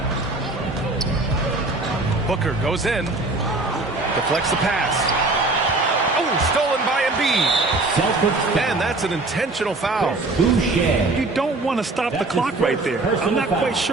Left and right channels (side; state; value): left; quieter; 3.2 dB